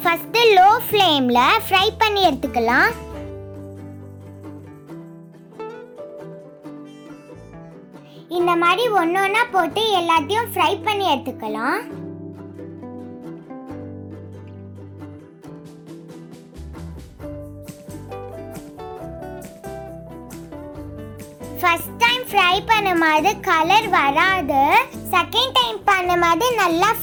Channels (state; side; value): identical; both; correlation 1.00